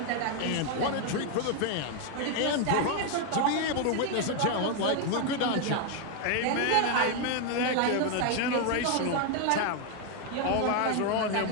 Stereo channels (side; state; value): both; different; correlation 0.01